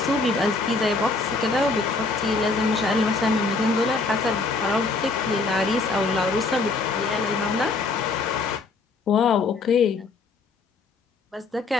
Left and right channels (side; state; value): right; quieter; 3.8 dB